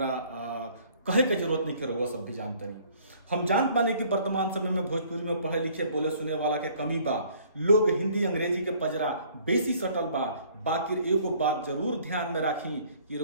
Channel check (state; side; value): inverted; both; correlation -0.57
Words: कहे के जरूरत नहीं है, रउआ सब भी जानते नहीं। हम जान पाने कि वर्तमान समय में भोजपुरी में पढ़े लिखे बोले सुने वाला के कमी बा। लोग हिंदी अंग्रेजी के पजरा बेसी सटल बा। बाकी एगो बात जरूर ध्यान में राखी कि